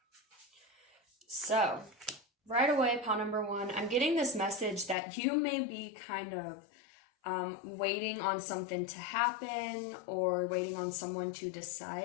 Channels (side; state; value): right; drops out; at 5.0 s